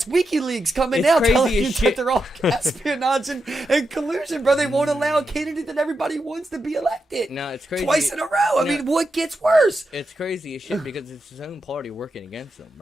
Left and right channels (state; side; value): normal; both; correlation 0.86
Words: WikiLeaks coming It's out crazy telling as you that shit. they're all espionage and collusion, bro. They won't allow a candidate that everybody wants to be elected. No, it's crazy. Twice in a row. I No. mean, what gets worse? It's crazy as shit because it's his own party working against him,